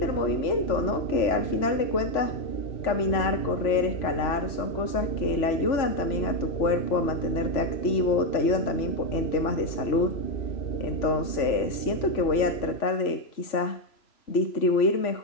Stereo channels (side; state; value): right; late; 3.0 ms